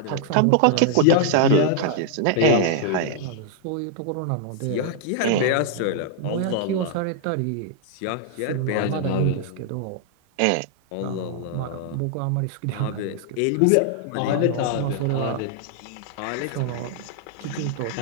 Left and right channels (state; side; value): different; both; correlation 0.00